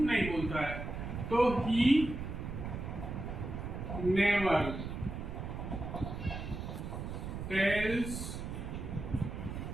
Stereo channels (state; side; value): noise; right; rumble, 6 dB below the sound